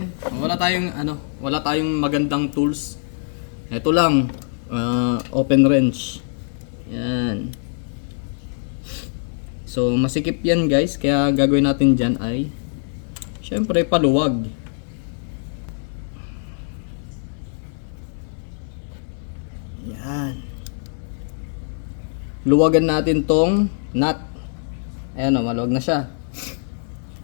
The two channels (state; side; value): silent; right; digital silence